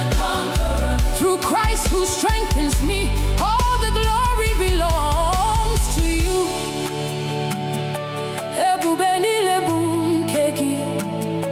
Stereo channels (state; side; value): identical; both; correlation 1.00